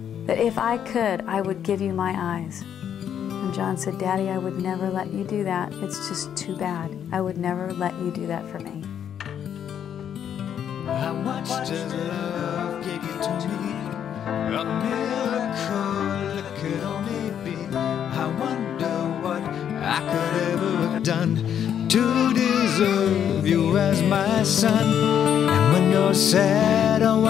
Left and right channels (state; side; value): quieter; right; 9.1 dB